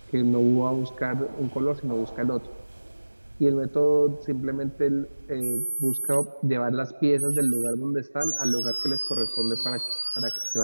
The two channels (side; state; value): both; inverted; correlation -1.00